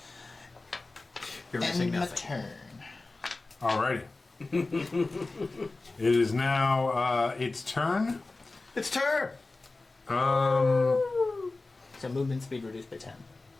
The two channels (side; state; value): right; quieter; 3.3 dB